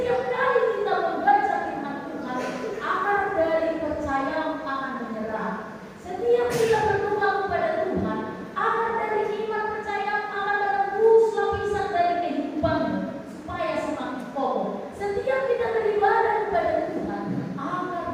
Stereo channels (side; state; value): both; identical; correlation 1.00